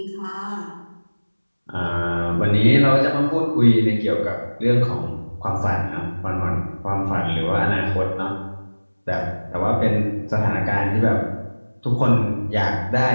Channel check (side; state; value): both; inverted; correlation -1.00